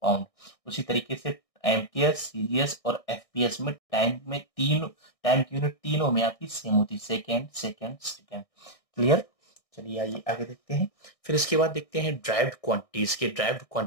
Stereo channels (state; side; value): late; right; 1.6 ms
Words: पाउंड। उसी तरीके से एमकेएस, सीजीएस और एफपीएस में टाइम की यूनिट तीनों में आपकी सेम होती है, सेकेंड सेकेंड सेकेंड। क्लियर? चलिए आइए आगे देखते हैं। फिर इसके बाद देखते हैं ड्राइव्ड क्वांटिटीज